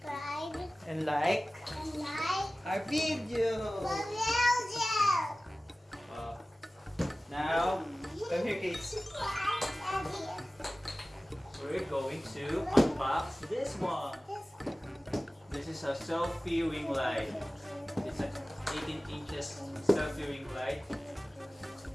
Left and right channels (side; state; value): both; normal; correlation 0.97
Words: and like and like our video. the video! Now, come here, kids. We're going to unbox this one. This is a selfie ring light. It's an 18 inches selfie ring light